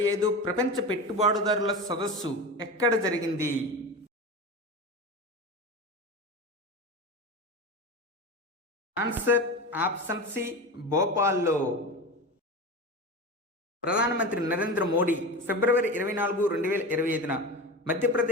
ప్రపంచ పెట్టుబడిదారుల సదస్సు ఎక్కడ జరిగింది? ఆన్సర్ ఆప్షన్ సి భోపాల్లో. ప్రధానమంత్రి నరేంద్ర మోడీ ఫిబ్రవరి 24, 2025న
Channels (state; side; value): normal; both; correlation 0.26